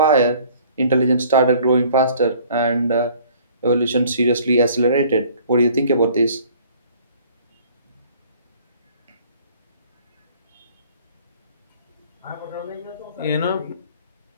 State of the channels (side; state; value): both; inverted; correlation -0.55